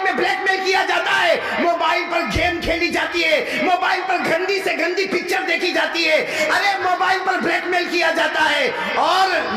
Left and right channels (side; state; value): both; identical; correlation 1.00